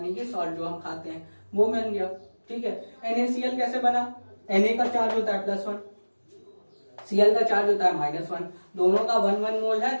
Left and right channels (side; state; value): both; inverted; correlation -1.00